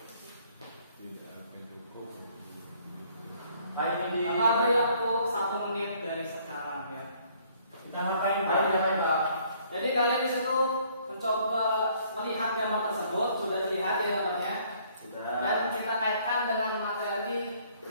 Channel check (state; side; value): inverted; both; correlation -0.62